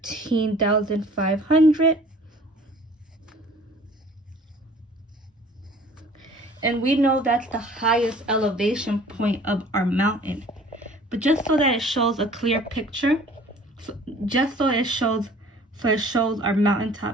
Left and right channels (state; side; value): normal; both; correlation 0.50